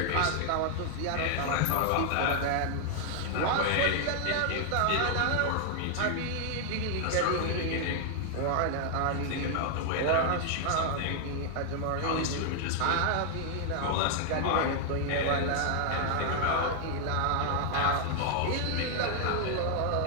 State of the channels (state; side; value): different; both; correlation 0.00